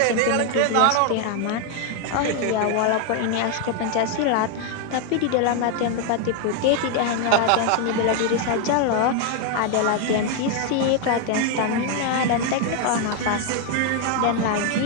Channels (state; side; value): different; both; correlation 0.01